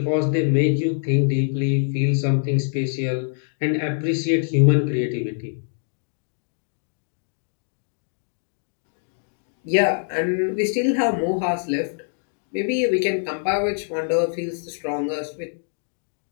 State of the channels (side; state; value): right; silent; digital silence